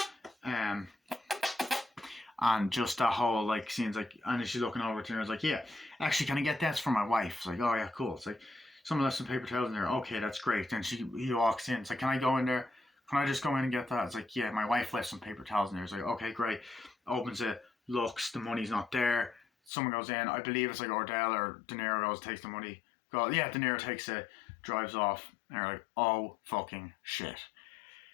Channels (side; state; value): right; drops out; at 19.7 s